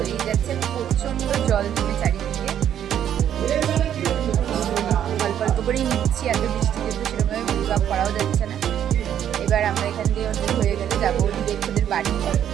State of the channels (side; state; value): left; quieter; 10.0 dB